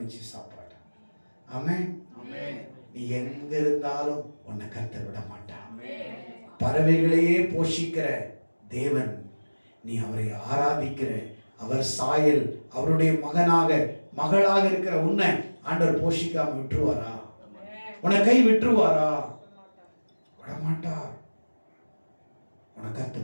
சாப்பாடு. ஆமென். நீ எங்க இருந்தாலும் உன்னை கர்த்தர் விட மாட்டான். பறவைகளையே போஷிக்கிற தேவன், நீ அவரை ஆராதிக்கிற, அவர் சாயல், அவருடைய மகனாக மகளாக இருக்கிற உன்னை ஆண்டவர் போஷிக்காம விட்டுருவாரா? உன்னை கை விட்டுருவாரா? விடமாட்டார். உனக்கு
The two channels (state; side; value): inverted; both; correlation -1.00